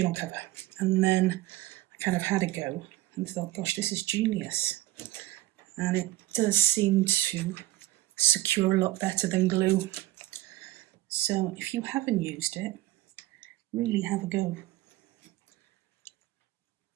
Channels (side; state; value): left; quieter; 17.0 dB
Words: cover, and then I kind of had a go and thought, gosh, this is genius. And it does seem to secure a lot better than glue. So if you haven't used it, really have a go,